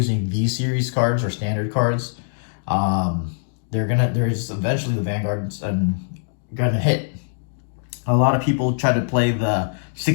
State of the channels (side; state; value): right; silent; digital silence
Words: V-Series cards or standard cards, there's eventually the Vanguard's gonna hit. A lot of people try to play the